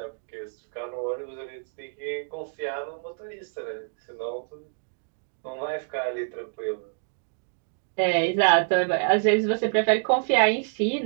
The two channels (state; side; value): silent; left; digital silence